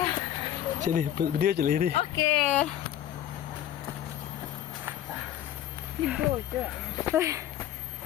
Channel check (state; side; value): quieter; right; 11.6 dB